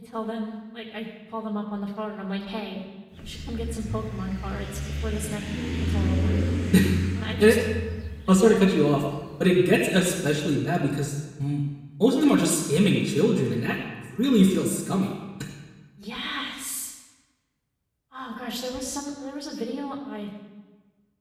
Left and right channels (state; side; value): identical; both; correlation 1.00